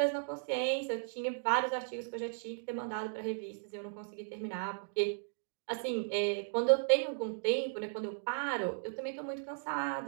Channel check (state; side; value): silent; left; digital silence